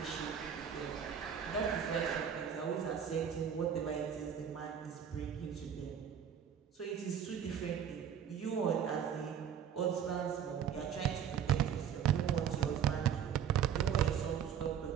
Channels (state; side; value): quieter; left; 8.4 dB